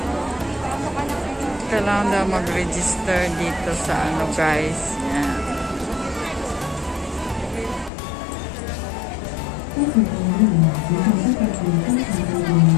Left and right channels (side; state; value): right; drops out; at 7.9 s